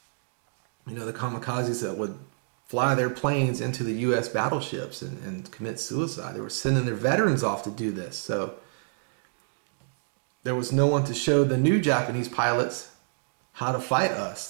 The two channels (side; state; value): left; silent; digital silence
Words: You know, the kamikazes that would fly their planes into the U.S. battleships and commit suicide. They were sending their veterans off to do this. So there was no one to show the new Japanese pilots how to fight